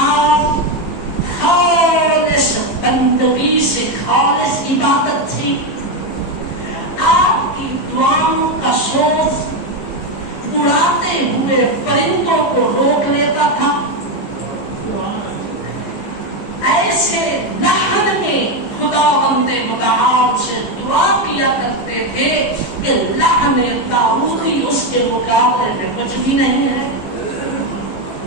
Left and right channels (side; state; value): right; late; 15 ms